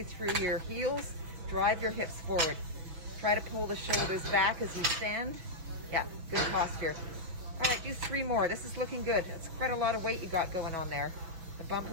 through your heels, drive your hips forward. Try to pull the shoulders back as you stand. Yeah, good posture. All right, do 3 more. This is looking good. It's quite a lot of weight you got going on there. The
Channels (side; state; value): left; late; 6.1 ms